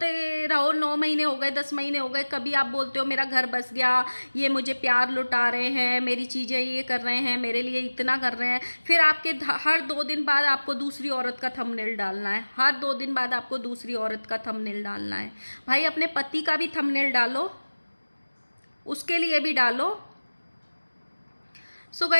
रहो, 9 महीने हो गए, 10 महीने हो गए, कभी आप बोलते हो मेरा घर बस गया, ये मुझे प्यार लुटा रहे हैं, मेरी चीज़ें ये कर रहे हैं, मेरे लिए इतना कर रहे हैं, फिर आपके हर 2 दिन बाद आपको दूसरी औरत का थंबनेल डालना है, हर 2 दिन बाद आपको दूसरी औरत का थंबनेल डालना है। भाई अपने पति का भी थंबनेल डालो, उसके लिए भी डालो। सो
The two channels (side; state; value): both; inverted; correlation -1.00